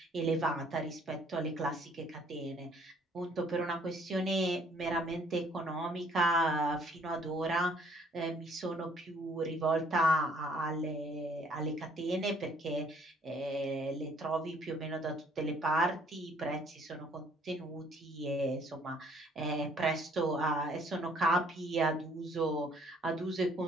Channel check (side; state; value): both; normal; correlation 0.62